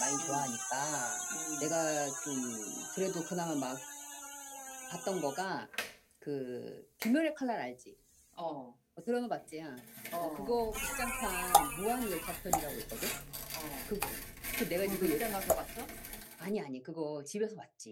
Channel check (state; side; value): identical; both; correlation 1.00